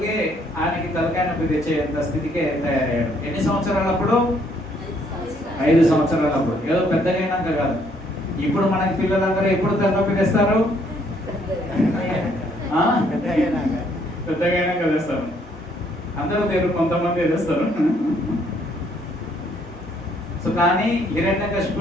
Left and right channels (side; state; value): both; normal; correlation 0.67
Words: ఆయనకి తలకాయ నొప్పి తెచ్చేంత స్థితికే తయారయ్యాడు. ఎన్ని సంవత్సరాలప్పుడు? 5 సంవత్సరాలప్పుడు. ఏదో పెద్దగా అయినాక కాదు. ఇప్పుడు మనకి పిల్లలందరూ ఎప్పుడు తలనొప్పి తెస్తారు? పెద్దగా అయినాక తెస్తారు. అందరూ తెరు, కొంతమంది తెస్తారు. సో కానీ